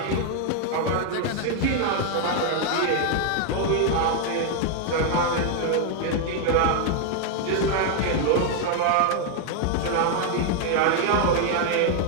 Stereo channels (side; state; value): both; different; correlation 0.00